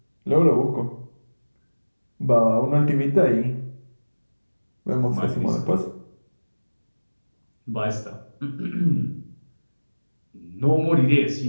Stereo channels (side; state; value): both; inverted; correlation -1.00